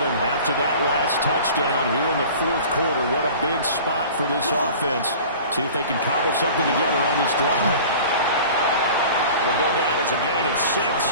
after that last touchdown here in the 4th quarter. What a big spot for this offense. See if they can cobble something together on this drive. Will go down as a gain of 6,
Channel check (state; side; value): inverted; both; correlation -0.41